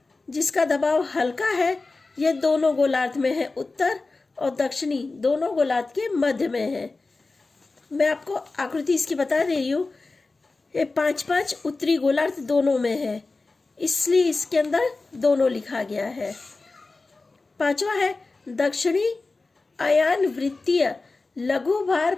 जिसका दबाव हल्का है। यह दोनों गोलार्ध में है, उत्तर और दक्षिणी दोनों गोलार्ध के मध्य में है। मैं आपको आकृति इसकी बता दे रही हूँ। ये 5-5 उत्तरी गोलार्ध दोनों में है, इसलिए इसके अंदर दोनों लिखा गया है। पांचवा है दक्षिणी आयान वृत्तीय लघु भार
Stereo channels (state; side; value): quieter; right; 3.6 dB